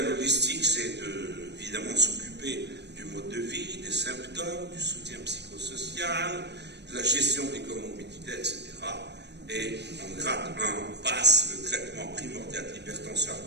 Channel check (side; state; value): left; late; 0.50 ms